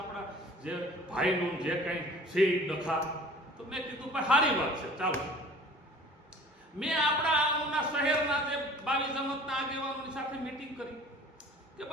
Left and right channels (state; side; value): normal; both; correlation 0.47